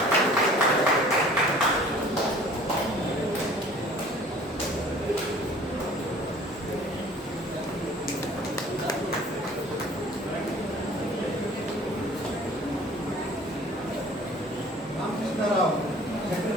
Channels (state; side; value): normal; both; correlation 0.49